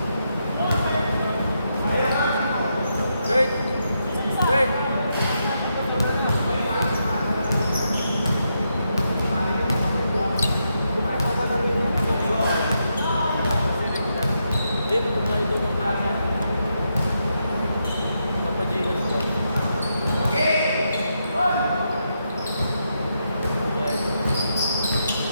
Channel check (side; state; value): both; inverted; correlation -0.82